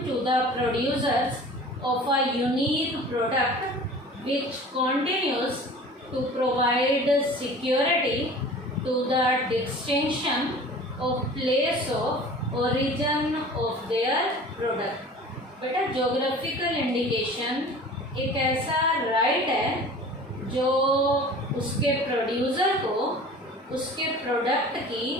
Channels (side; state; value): both; normal; correlation 0.42